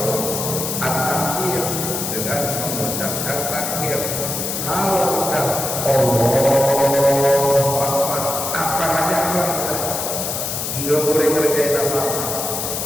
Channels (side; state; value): left; noise; hiss, 3 dB below the sound